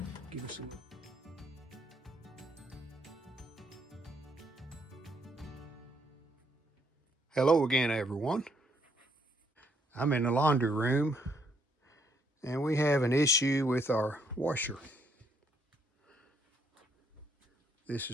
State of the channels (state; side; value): normal; both; correlation 0.71